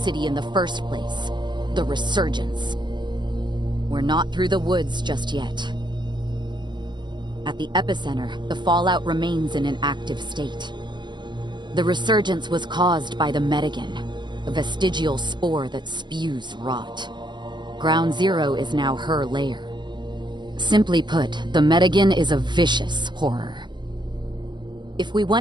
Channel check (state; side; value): late; left; 0.22 ms